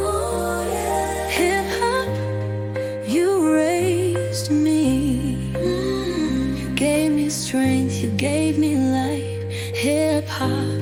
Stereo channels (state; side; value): identical; both; correlation 1.00